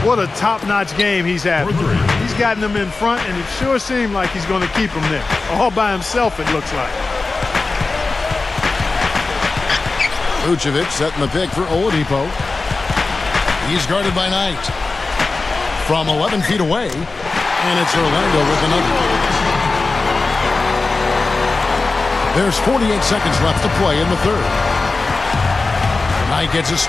What a top-notch game he's having. He's gotten them in front, and it sure seemed like he's going to keep them there. All by himself, it looks like. Vucevic setting the pick for Oladipo. He's guarded by Knight. From 11 feet away, and it's Orlando with another. There's 48 seconds left to play in the third. Knight gets a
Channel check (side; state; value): right; quieter; 3.7 dB